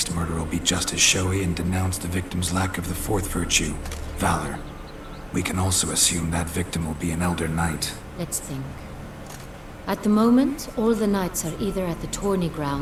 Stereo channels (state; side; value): identical; both; correlation 1.00